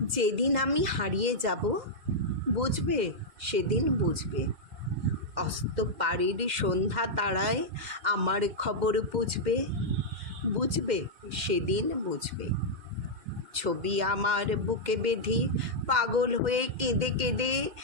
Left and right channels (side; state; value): left; late; 2.1 ms